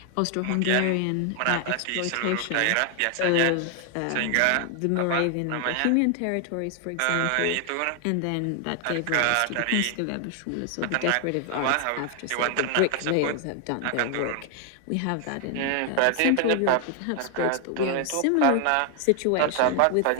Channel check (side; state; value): both; different; correlation 0.00